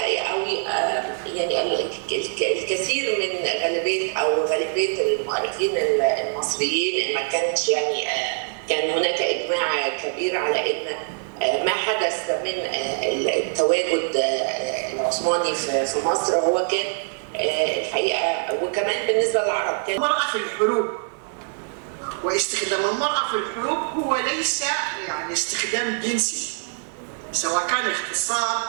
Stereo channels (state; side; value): silent; left; 63 dB below the other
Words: يعني الكثير من غالبيه المؤرخين المصريين ما كانش كان هناك اجماع كبير على ان ما حدث من التواجد العثماني في مصر هو كان الحقيقه، وكمان بالنسبه للعرب كان المرأة في الحروب. واستخدام المرأة في الحروب هو ليس يعني استخدام جنسي، سواء كان